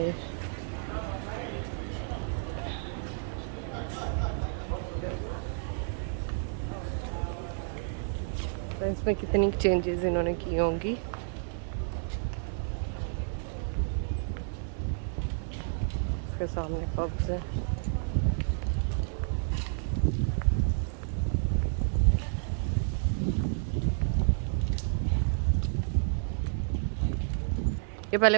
तो इसमें कितनी चेंजेस इन्होंने की होंगी। इसके सामने पब्स है। ये पहले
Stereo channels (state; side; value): silent; left; digital silence